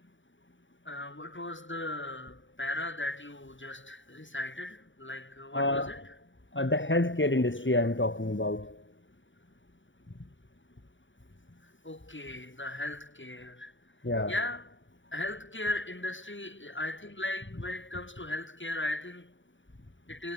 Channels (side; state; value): right; late; 0.55 ms